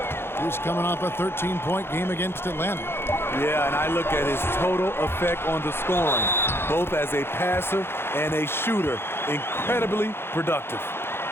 who's coming off a 13-point game against Atlanta. Yeah, and I look at his total effect on the scoring, both as a passer and a shooter. Incredibly productive.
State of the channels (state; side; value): late; right; 0.11 ms